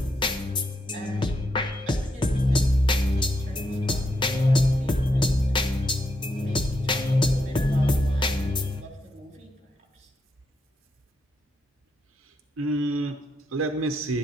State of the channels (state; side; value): normal; both; correlation 0.81